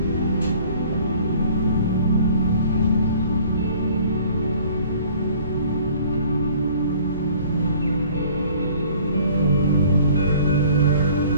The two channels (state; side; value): inverted; both; correlation -0.52